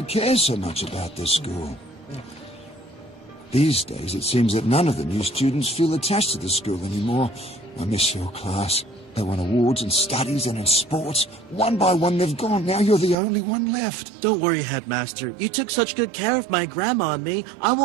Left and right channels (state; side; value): drops out; left; at 13.2 s